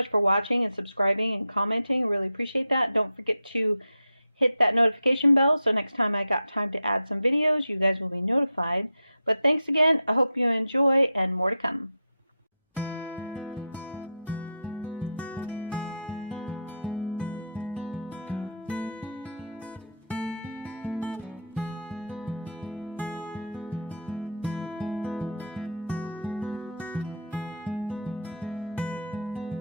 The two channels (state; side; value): inverted; both; correlation -0.72